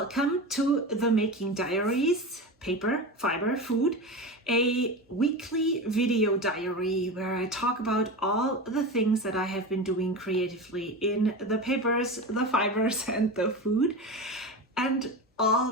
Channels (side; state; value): both; normal; correlation 0.25